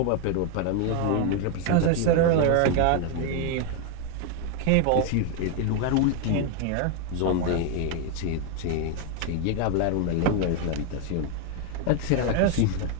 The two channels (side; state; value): both; different; correlation 0.01